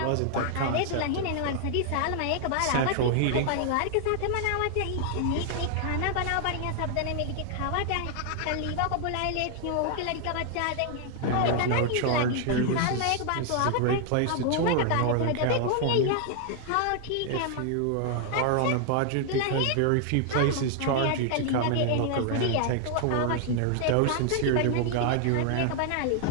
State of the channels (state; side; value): different; both; correlation 0.00